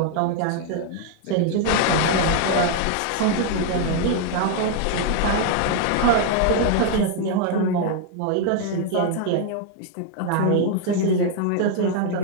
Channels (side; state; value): both; different; correlation 0.00